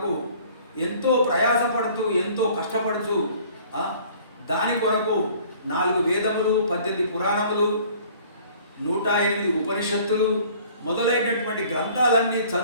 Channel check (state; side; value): inverted; both; correlation -0.53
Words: ఎంతో ప్రయాసపడుతూ, ఎంతో కష్టపడుతూ దాని కొరకు 4 వేదములు, 18 పురాణములు, 108 ఉపనిషత్తులు మొదలైనటువంటి గ్రంథాలన్నీ